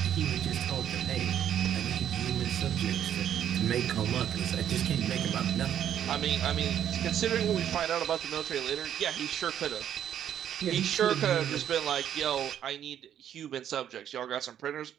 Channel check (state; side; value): quieter; left; 10.1 dB